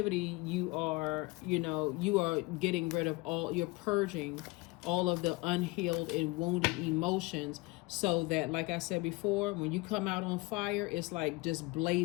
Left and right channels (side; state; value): right; quieter; 24.1 dB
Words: you are, you know, you are getting rid of all, you're purging all of the unhealed and wounded emotions, so that, like I said before, when you come out on fire, it's like just